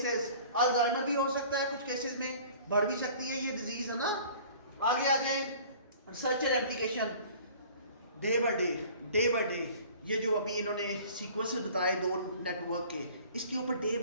Alzheimer भी हो सकता है कुछ केसेस में, बढ़ भी सकती है ये डिजीज, है ना। आगे आ जाए research and application. Day by day ये जो अभी इन्होंने सीक्वेंसेस बताए दो नेटवर्क के, इसके ऊपर डे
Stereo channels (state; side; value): inverted; both; correlation -0.48